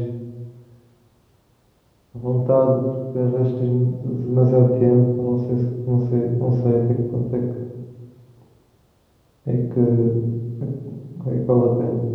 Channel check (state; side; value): identical; both; correlation 1.00